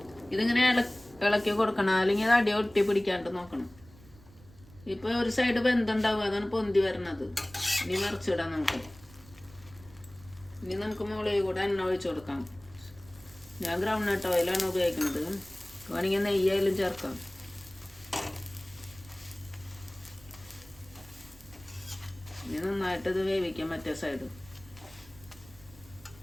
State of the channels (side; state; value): right; noise; rumble, 23 dB below the sound